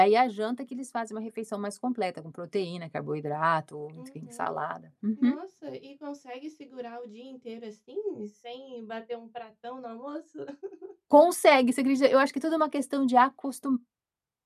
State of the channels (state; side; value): identical; both; correlation 1.00